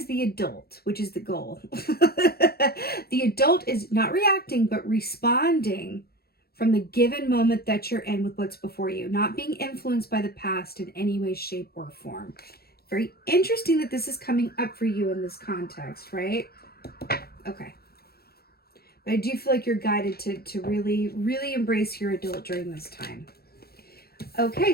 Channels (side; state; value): right; late; 0.45 ms